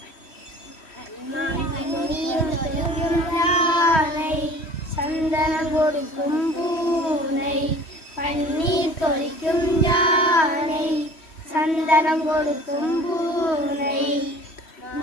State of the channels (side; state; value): right; late; 3.1 ms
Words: யானை, சந்தனம் கொடுக்கும் பூனை. பன்னீர் தொளிக்கும் யானை, சந்தனம் கொடுக்கும் பூனை.